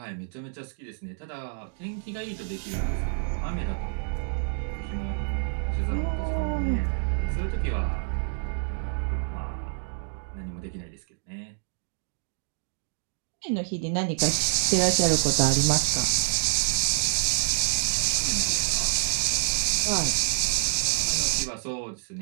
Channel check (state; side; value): silent; left; digital silence